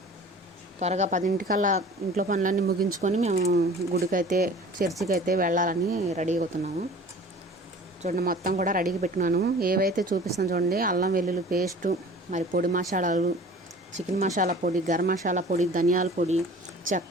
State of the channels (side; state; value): both; normal; correlation 0.44